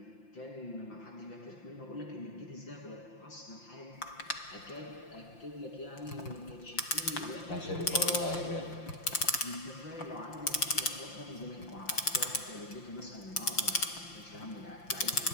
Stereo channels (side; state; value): right; late; 5.8 ms